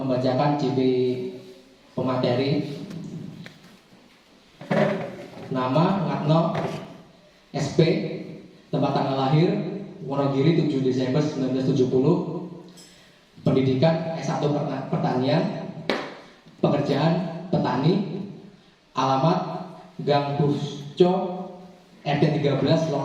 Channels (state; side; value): identical; both; correlation 1.00